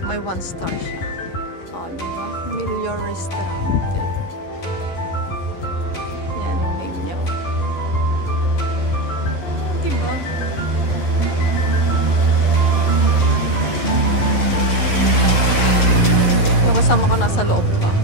may 1 star siya. Oh, diba? Milior Restaurante. Yan yung name niya. Diba? Yung kasama ko nasa loob pa.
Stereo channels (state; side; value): late; right; 11 ms